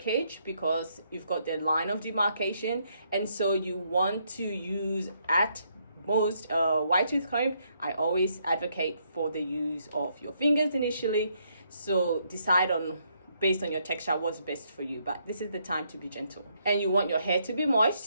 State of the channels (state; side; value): inverted; both; correlation -0.74